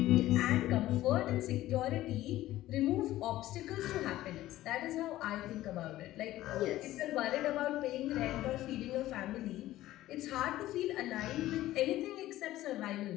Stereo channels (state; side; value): quieter; right; 15.2 dB